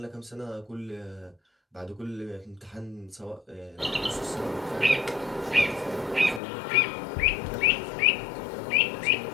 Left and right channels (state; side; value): drops out; right; at 6.4 s